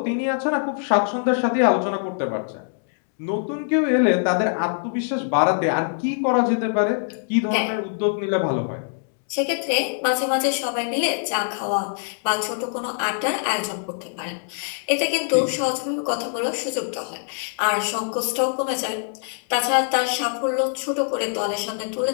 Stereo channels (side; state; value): right; silent; digital silence